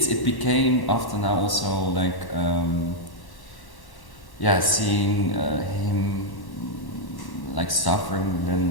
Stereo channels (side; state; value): right; late; 1.1 ms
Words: became after now also like seeing him like suffering